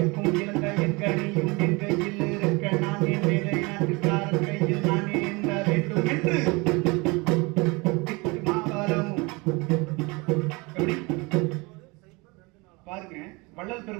இரண்டையும் கணியும் என் கையில் இருக்க நான் என் வேலை நாட்டுக்காரன் கையில் நான் ஏந்த வேண்டும் என்று பாருங்க வள்ளல்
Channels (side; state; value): left; quieter; 26.2 dB